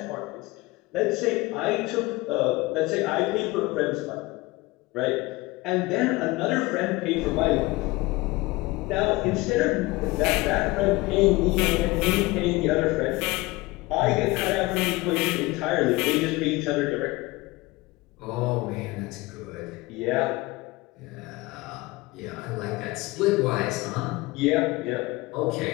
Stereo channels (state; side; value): quieter; right; 21.6 dB